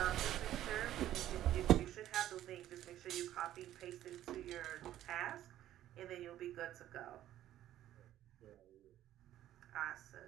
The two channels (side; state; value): left; quieter; 12.7 dB